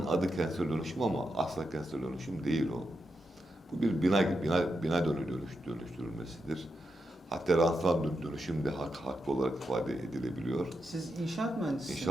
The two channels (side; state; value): both; normal; correlation 0.86